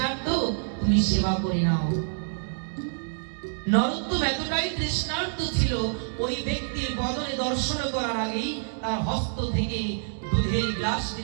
তুমি সেবা করে নাও। নরোত্তম এতটাই তৃষ্ণার্ত ছিল, ওই ব্যক্তির বদনে দর্শন করার আগেই তার হস্ত থেকে দুধের গ্লাসটি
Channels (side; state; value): left; silent; 60 dB below the other